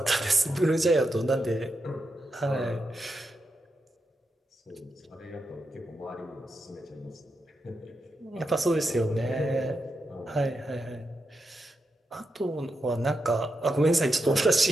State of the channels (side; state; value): both; normal; correlation 0.86